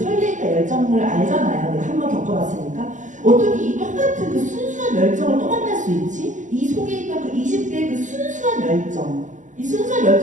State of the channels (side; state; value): left; late; 0.36 ms